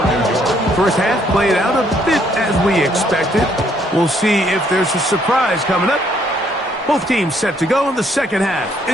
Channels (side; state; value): both; normal; correlation 0.68